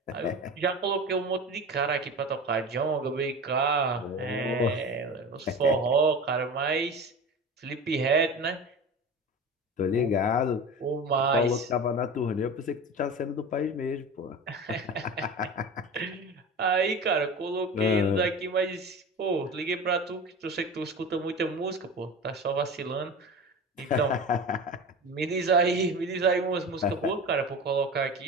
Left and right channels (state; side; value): normal; both; correlation 0.32